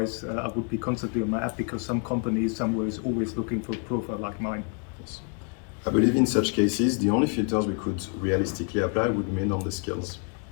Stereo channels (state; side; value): quieter; right; 38.5 dB